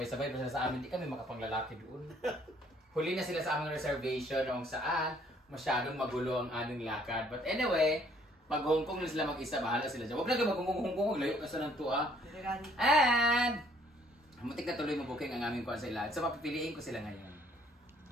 pa sila sa amin, di kami makapanglalaki doon. Huli na sila sa aming reservation kung saan masyadong magulo ang aming lakad. But anyway, pag Hong Kong na sila mag-isa, bahala sila dyan. Huwag na kayo mag-Hong Kong, layo ka sa ng tuwa. And, muntik na tuloy mabuking ang aming kuwan sa ilan. So, papipiliin ko sila ngayon.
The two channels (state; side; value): normal; both; correlation 0.63